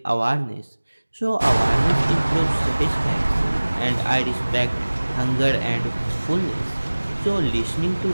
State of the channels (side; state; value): both; inverted; correlation -1.00